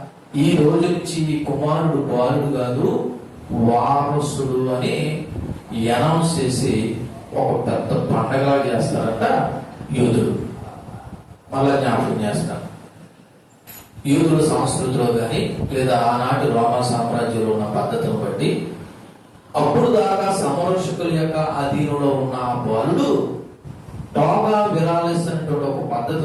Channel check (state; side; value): identical; both; correlation 1.00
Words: ఈ రోజు నుంచి ఈ కుమారుడు బాలుడు కాదు వారసుడు అని అనౌన్స్ చేసి ఒక పెద్ద పండగలా చేస్తారంట యూదులు. మళ్ళా జ్ఞాపకం చేస్తారు, యూదుల సంస్కృతిలో కానీ లేదా ఆనాటి రోమా సామ్రాజ్యంలో ఉన్న పద్ధతిని బట్టి అప్పుడు దాకా సంరక్షకుల యొక్క అధీనంలో ఉన్న ఆ బాలుడు టోగా విరాలిస్ అనేటువంటి ఒక